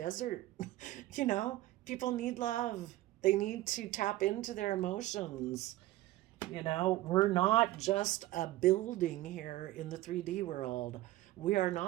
People need love. They need to tap into their emotions. We're not just a building here in the 3D world. We are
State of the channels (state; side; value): quieter; left; 16.4 dB